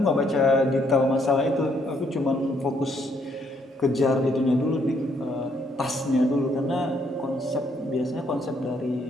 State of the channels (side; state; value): both; normal; correlation 0.71